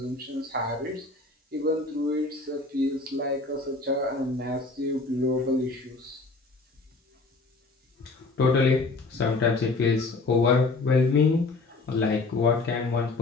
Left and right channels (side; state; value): right; quieter; 3.5 dB